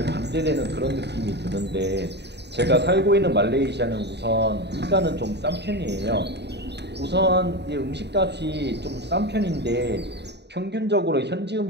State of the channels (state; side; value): late; left; 0.50 ms